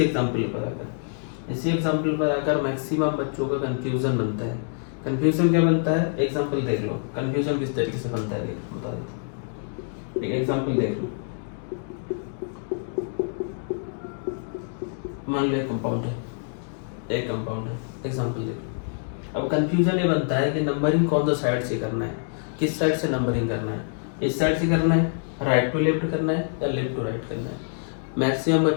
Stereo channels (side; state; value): right; silent; digital silence